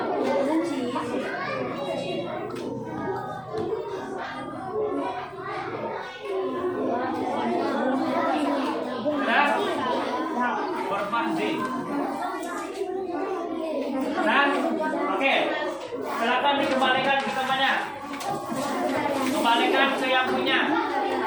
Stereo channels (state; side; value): noise; left; hum, 30 dB below the sound